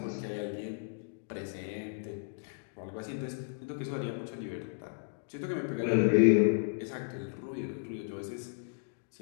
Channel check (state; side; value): silent; right; digital silence